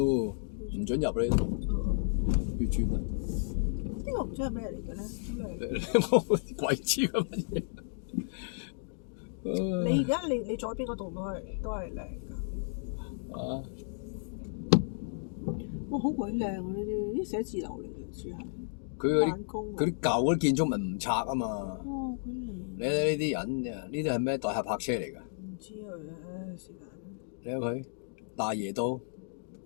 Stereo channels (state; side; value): silent; right; digital silence